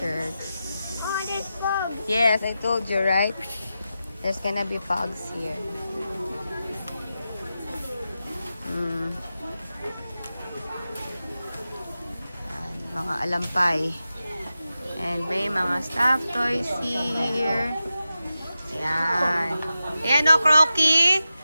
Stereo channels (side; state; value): both; inverted; correlation -0.91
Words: Oh, there's Pugs. Yes, I told you, right? There's gonna be Pugs here. Yan, mga alampay. And may mga stuffed toys here. Ayan. Ayan o, Crocky.